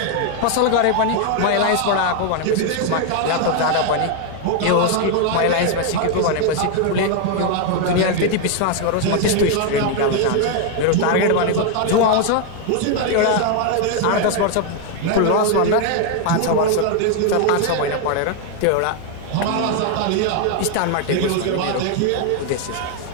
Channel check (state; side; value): different; both; correlation 0.01